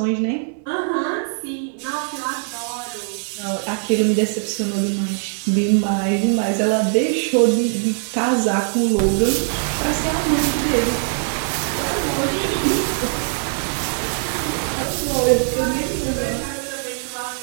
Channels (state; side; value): silent; left; digital silence